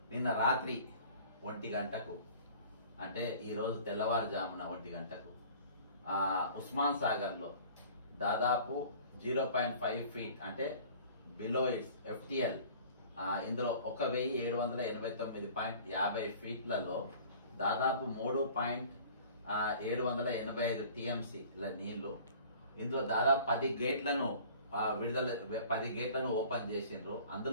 నిన్న రాత్రి 1 గంటకు అంటే ఈరోజు తెల్లవారుజామున 1 గంటకు ఉస్మాన్ సాగర్లో దాదాపు 0.5 ఫీట్ అంటే బిలో ఇట్స్ ఎఫ్టిఎల్, ఇందులో 1789.50 ఫీట్లలో దాదాపు 3.785 టీఎంసీల నీళ్లు. ఇందులో దాదాపు 10 గేట్లను 10 గేట్లను ఓపెన్ చేసిండ్రు.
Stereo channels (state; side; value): inverted; both; correlation -0.47